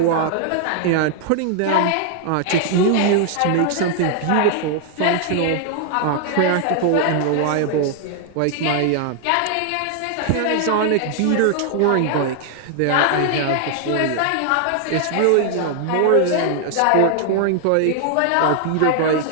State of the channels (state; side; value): different; both; correlation 0.00